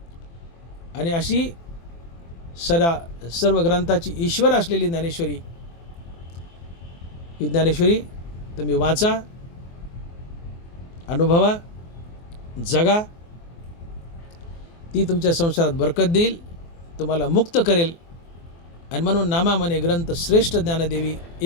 आणि अशी सर्व ग्रंथाची ईश्वर असलेली ज्ञानेश्वरी, ही ज्ञानेश्वरी तुम्ही वाचा, अनुभवा, जगा. ती तुमच्या संसारात बरकत देईल, तुम्हाला मुक्त करेल. आणि म्हणून नामा म्हणे ग्रंथ श्रेष्ठ ज्ञानदेवी,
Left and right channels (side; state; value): right; late; 24 ms